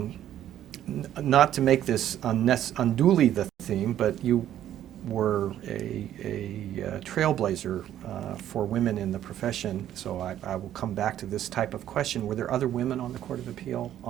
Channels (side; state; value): left; quieter; 11.5 dB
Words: Not to make this unduly the theme, but you were a trailblazer for women in the profession, so I will come back to this type of question. Were there other women on the Court of Appeal